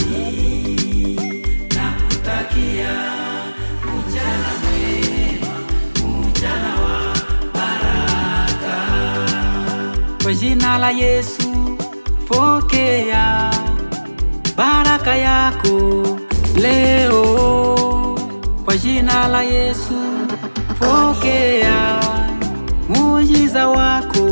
Nakutakia mchana mwema, mchana wa baraka. Kwa jina la Yesu pokea baraka yako leo. Kwa jina la Yesu pokea muujiza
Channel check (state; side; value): inverted; both; correlation -1.00